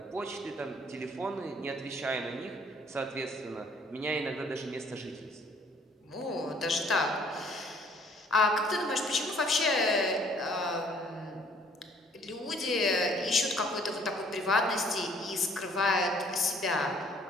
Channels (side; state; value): both; normal; correlation 0.59